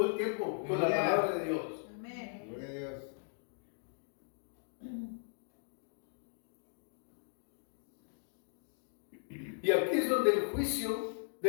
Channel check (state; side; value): silent; right; digital silence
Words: el tiempo con la Aleluya. palabra de Dios. Amén. Gloria a Dios. Y aquí es donde el juicio